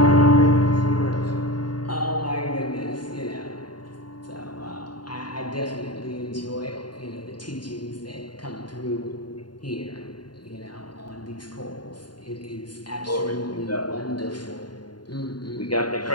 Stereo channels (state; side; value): late; right; 0.71 ms